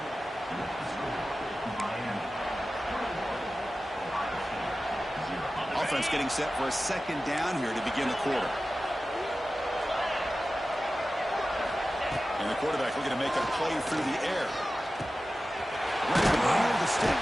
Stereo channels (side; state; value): both; normal; correlation 0.95